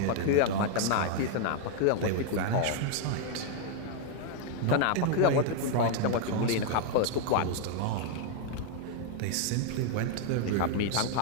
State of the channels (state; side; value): different; both; correlation 0.00